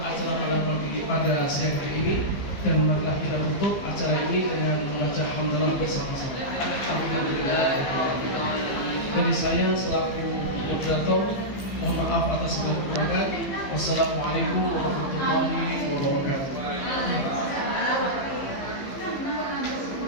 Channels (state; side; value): late; right; 15 ms